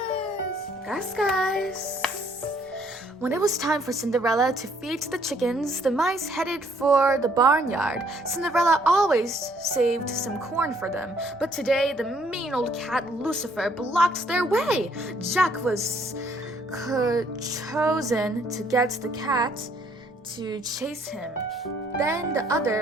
Gus. When it was time for Cinderella to feed the chickens, the mice headed for the barnyard. Cinderella always saved some corn for them, but today the mean old cat Lucifer blocked their way. Jack was chosen to get the cat to chase him. Then the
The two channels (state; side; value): normal; both; correlation 0.65